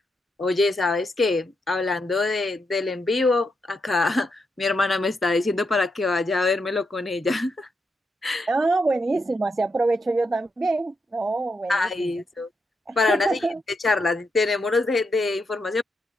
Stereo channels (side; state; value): both; normal; correlation 0.82